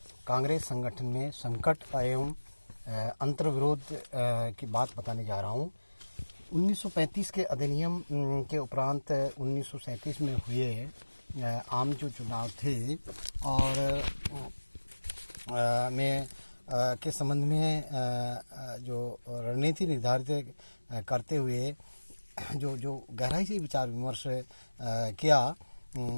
कांग्रेस संगठन में संकट एवं अंतर्विरोध की बात बताने जा रहा हूँ। 1935 के अधिनियम के उपरांत 1937 में हुए आम जो चुनाव थे और में के संबंध में जो रणनीति निर्धारित करते हुए जो गहराई से विचार विमर्श किया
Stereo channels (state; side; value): inverted; both; correlation -1.00